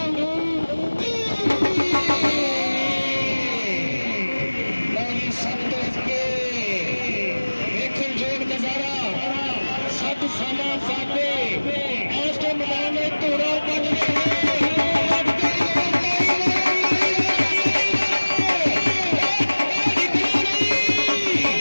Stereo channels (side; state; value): both; inverted; correlation -1.00